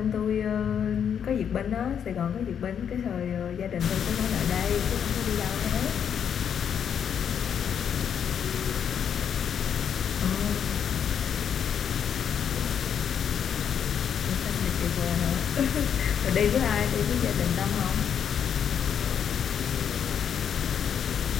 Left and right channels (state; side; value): quieter; right; 8.1 dB